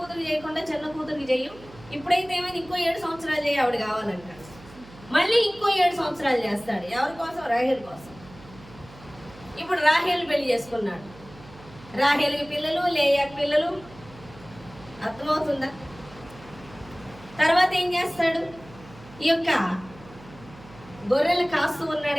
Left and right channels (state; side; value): noise; right; hum, 20 dB below the sound